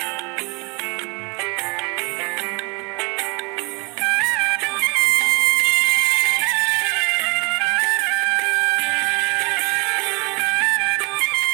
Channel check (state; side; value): quieter; left; 29.8 dB